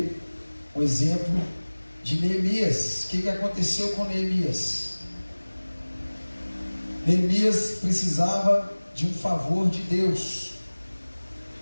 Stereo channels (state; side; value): inverted; both; correlation -1.00